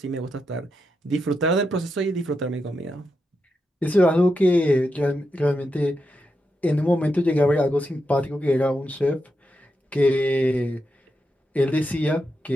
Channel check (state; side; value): normal; both; correlation 0.85